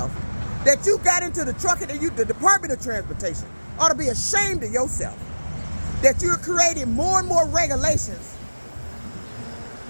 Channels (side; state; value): both; inverted; correlation -1.00